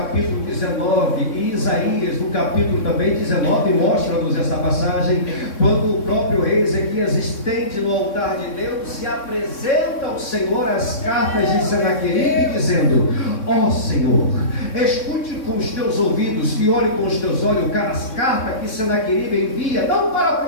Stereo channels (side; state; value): right; late; 3.6 ms